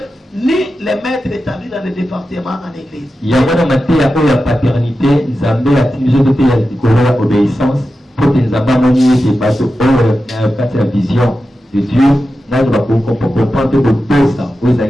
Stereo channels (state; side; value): normal; both; correlation 0.92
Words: ni les maîtres établis dans le département en église. Il y a une paternité, Nzambe a utilisé de l'obéissance pour que Nzambe a la vision de Dieu.